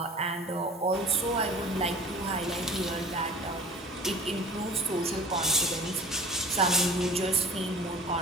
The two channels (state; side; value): normal; both; correlation 0.42